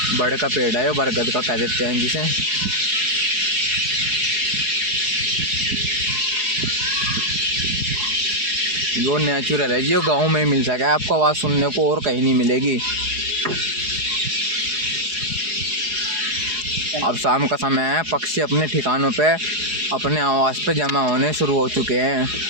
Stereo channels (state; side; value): late; left; 4.8 ms